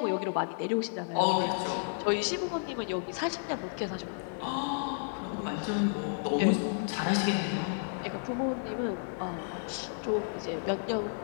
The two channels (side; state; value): right; silent; digital silence